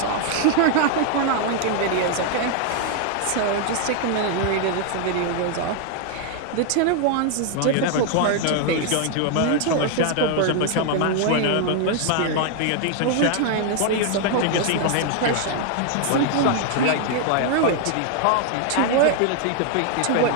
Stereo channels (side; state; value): both; different; correlation 0.00